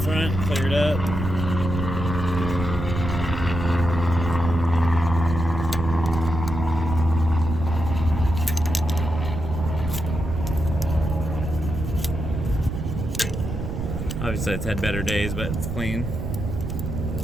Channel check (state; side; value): noise; right; rumble, 4 dB below the sound